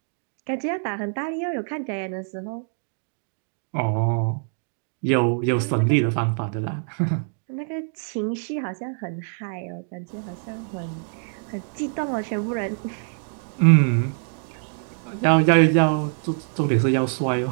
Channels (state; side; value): silent; left; 62 dB below the other